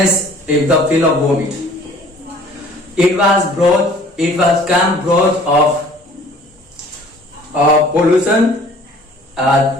with the feel of vomit. It was camp growth of pollution,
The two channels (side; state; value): both; normal; correlation 0.52